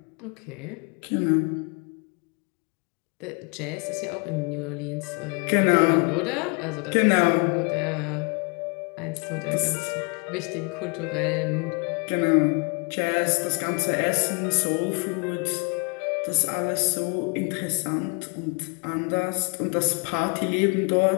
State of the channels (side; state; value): right; quieter; 33.9 dB